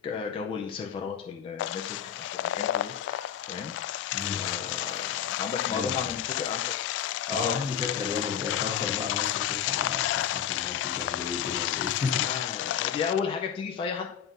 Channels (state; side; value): quieter; right; 9.0 dB